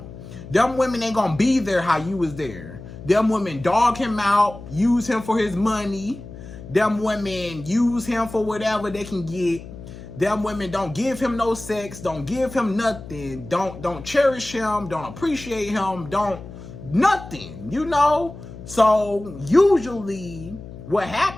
Them women ain't gonna be there how you was there. Them women dog him out, use him for his money. Them women use him for whatever they can get. Them women don't give him no sex, don't give him nothing, don't cherish him, don't appreciate him, don't nothing, you know? So usually what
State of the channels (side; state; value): left; noise; hum, 14 dB below the sound